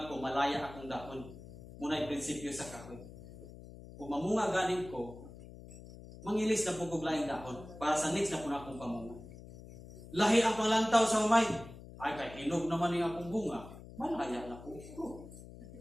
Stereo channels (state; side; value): noise; left; hum, 16 dB below the sound